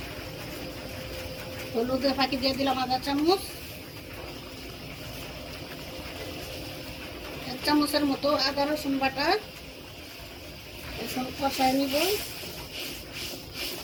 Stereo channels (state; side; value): identical; both; correlation 1.00